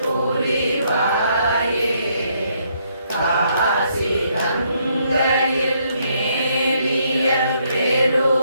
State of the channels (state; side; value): inverted; both; correlation -0.72